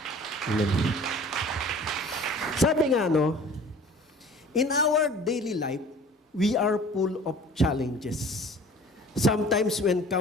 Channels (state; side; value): normal; both; correlation 0.46